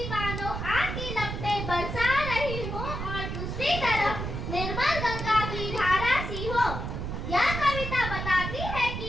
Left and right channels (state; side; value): noise; right; rumble, 4 dB below the sound